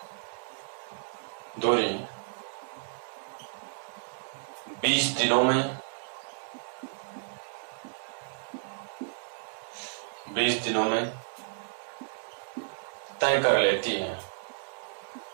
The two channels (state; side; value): silent; left; digital silence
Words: 20 दिनों में तय कर लेती है,